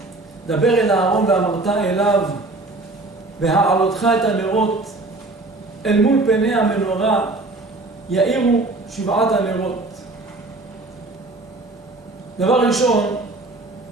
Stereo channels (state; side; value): quieter; left; 3.1 dB